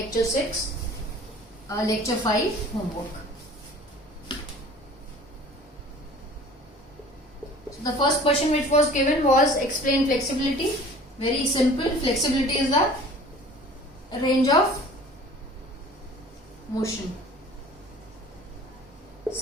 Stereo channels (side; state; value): both; normal; correlation 0.46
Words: 6, lecture 5 homework. So the first question which was given was explain flexibility. Very simple. Flexibility is the range of motion.